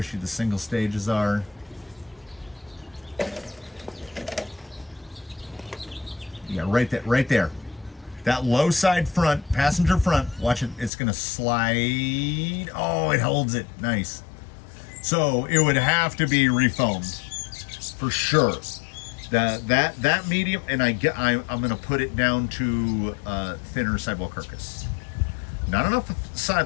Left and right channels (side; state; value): right; drops out; at 10.9 s